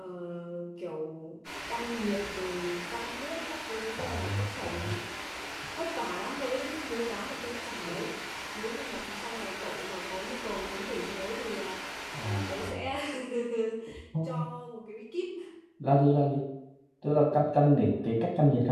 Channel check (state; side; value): identical; both; correlation 1.00